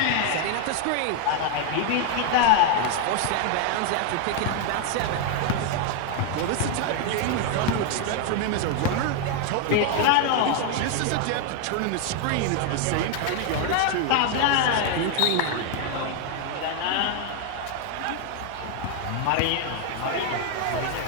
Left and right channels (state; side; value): different; both; correlation 0.01